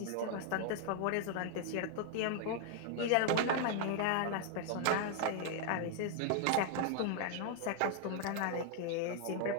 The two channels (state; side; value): different; both; correlation 0.00